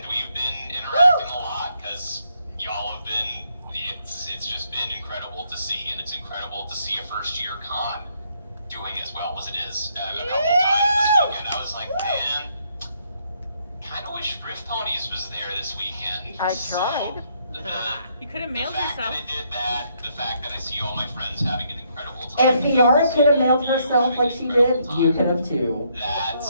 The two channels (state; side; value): inverted; both; correlation -0.73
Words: been interacting a lot, because y'all have been, it's just been incredible to see, and it's incredible to see a first-year con doing as well as it is. A couple times this weekend, I was like, man, kind of wish Rift Ponies was there this weekend. I tried. You could have mailed yourself. The fact that it did that, the fact that I see all my friends having an incredible time. If Fiora could have mailed herself like she did, you could have too.